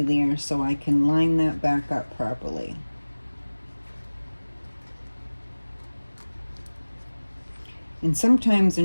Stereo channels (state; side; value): inverted; both; correlation -1.00